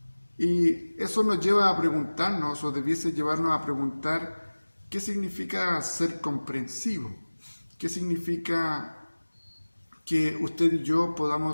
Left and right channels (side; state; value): both; inverted; correlation -1.00